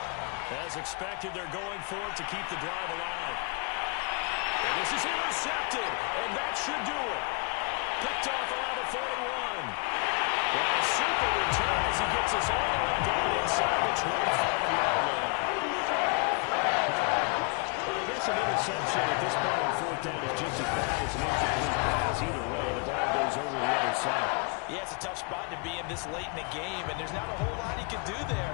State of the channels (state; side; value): quieter; right; 33.9 dB